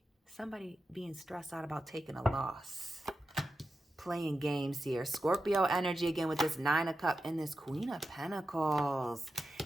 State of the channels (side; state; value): both; normal; correlation 0.90